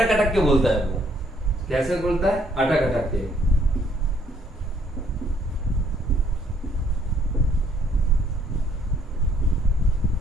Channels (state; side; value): normal; both; correlation 0.66